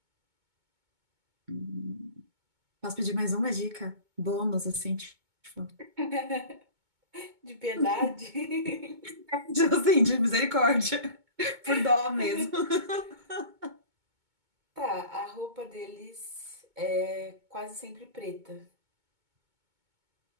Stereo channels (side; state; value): left; late; 2.2 ms